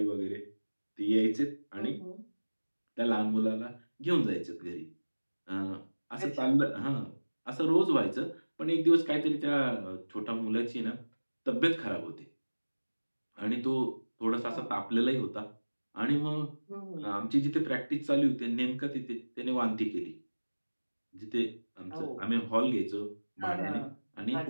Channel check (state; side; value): inverted; both; correlation -1.00